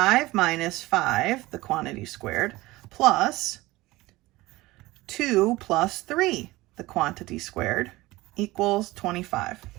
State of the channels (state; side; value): quieter; left; 19.5 dB